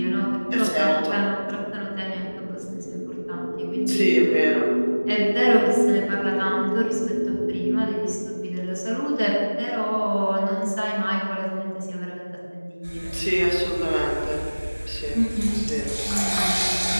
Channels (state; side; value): inverted; both; correlation -1.00